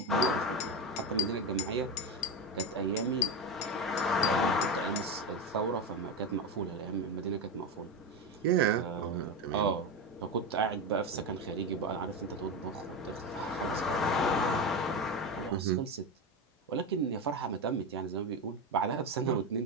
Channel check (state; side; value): normal; both; correlation 0.16